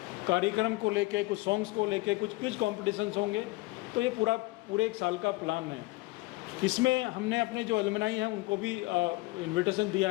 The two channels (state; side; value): quieter; right; 21.7 dB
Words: कार्यक्रम को लेके, कुछ सॉन्ग्स को लेके, कुछ क्विज कॉम्पिटिशन्स होंगे। तो ये पूरे एक साल का प्लान है। इसमें हमने अपने जो एलुमनाई हैं उनको भी इन्विटेशन दिया